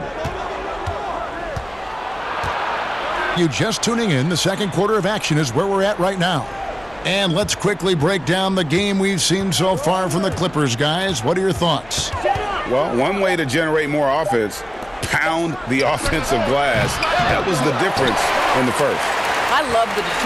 You just tuning in, the second quarter of action is where we're at right now. And let's quickly break down the game we've seen so far from the Clippers, guys. What are your thoughts? Well, one way to generate more offense, pound the offensive glass. That was the difference in the first. I love the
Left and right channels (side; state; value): left; noise; hum, 25 dB below the sound